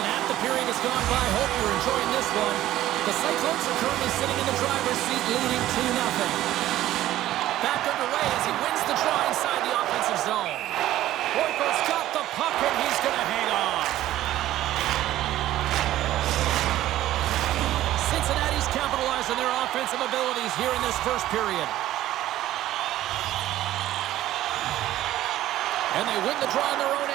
half the period has gone by. Hope you're enjoying this one. The Cyclones are currently sitting in the driver's seat, leading 2-0. Back underway as he wins the draw inside the offensive zone. Boyko's got the puck and he's going to hang on. Cincinnati's capitalized on their offensive abilities here in this first period. And they win the draw on their own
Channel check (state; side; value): quieter; left; 14.1 dB